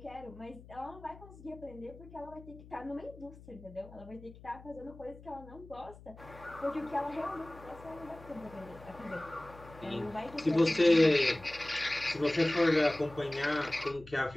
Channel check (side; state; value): left; noise; hum, 19 dB below the sound